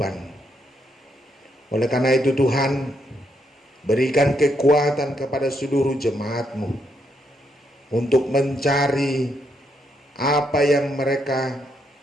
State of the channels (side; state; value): both; normal; correlation 0.77